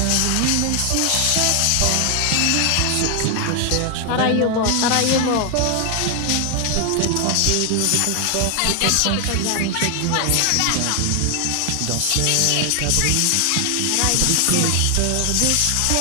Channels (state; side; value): different; both; correlation 0.00